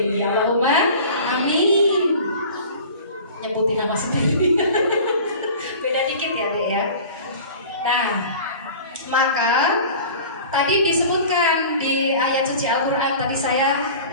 Allahumma amin. Nyebutin nama sendiri. Beda dikit ya dek ya. Nah, maka tadi disebutkan di ayat suci Al-Quran, tadi saya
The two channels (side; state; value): both; inverted; correlation -0.41